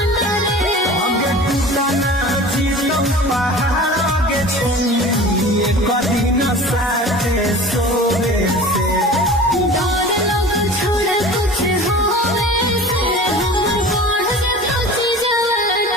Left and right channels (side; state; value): both; normal; correlation 0.39